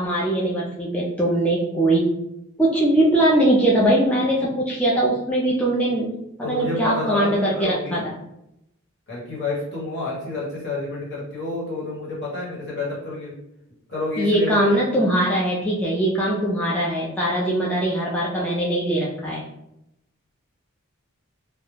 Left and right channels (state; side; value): normal; both; correlation 0.37